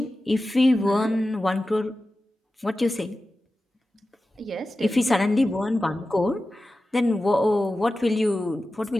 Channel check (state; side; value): normal; both; correlation 0.94